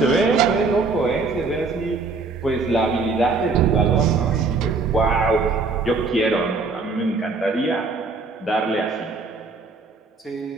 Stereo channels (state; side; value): quieter; left; 4.0 dB